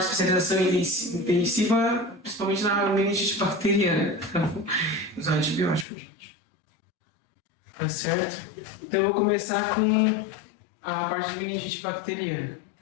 especialização intensiva, principalmente na meningite bacteriana, usar antibiótico, gente. Tá certo? Então eu vou começar com a parte de meningite bacteriana,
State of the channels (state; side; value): drops out; right; at 5.9 s